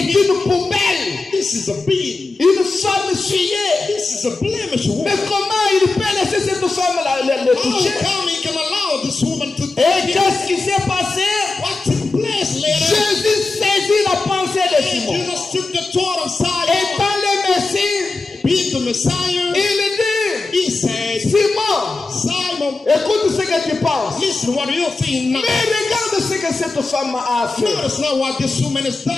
him. une poubelle, This is a being. une femme essuyée. This is a blemish Mais woman. comment il peut laisser cette femme le How toucher? come he can allow this woman to touch Et him? qu'est-ce qui s'est passé? What took place later? Jésus saisit la pensée de And Simon. Jesus took the thought of Et Simon, dans le Messie, being the Messiah. il dit, He said, Simon, Simon, écoute ce que tu penses. listen, what do you think now? Mais regarde ce que cette femme a fait. Notice not what this woman has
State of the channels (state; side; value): quieter; right; 3.5 dB